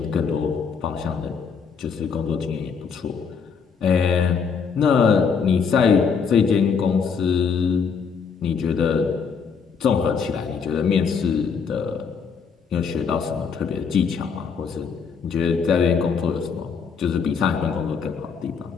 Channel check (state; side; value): quieter; right; 6.0 dB